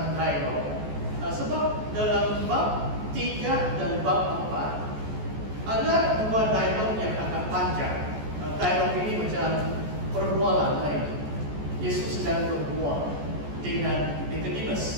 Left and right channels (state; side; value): late; left; 14 ms